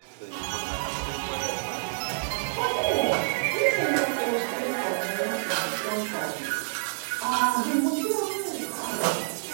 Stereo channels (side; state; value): left; silent; digital silence